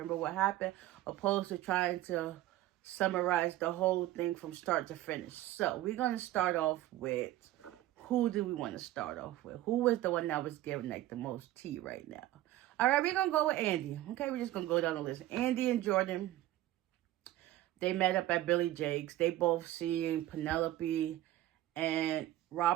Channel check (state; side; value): quieter; left; 14.9 dB